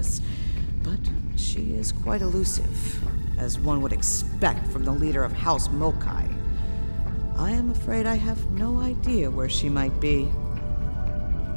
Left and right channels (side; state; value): both; inverted; correlation -1.00